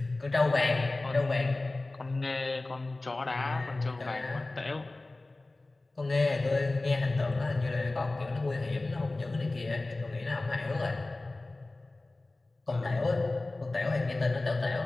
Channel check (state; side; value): quieter; right; 3.0 dB